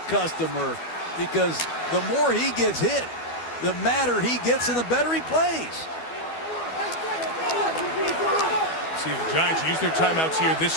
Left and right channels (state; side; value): late; right; 12 ms